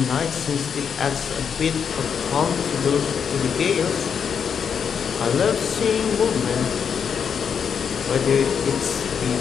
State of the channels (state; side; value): quieter; right; 7.0 dB